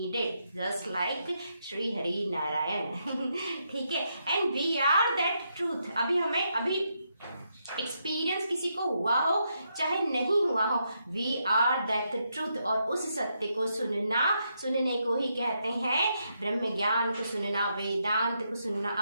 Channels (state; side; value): inverted; both; correlation -0.80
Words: just like Shri Hari Narayan. ठीक है. And we are that truth. अभी एक्सपीरियंस किसी को हुआ हो चाहे नहीं हुआ हो, वी आर दैट ट्रूथ. और उस सत्य को सुनने को ही कहते हैं ब्रह्म ज्ञान को सुनना, वेदांत को सुनना,